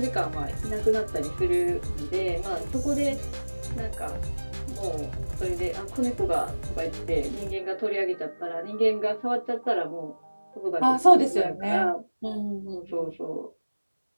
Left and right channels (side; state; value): both; inverted; correlation -1.00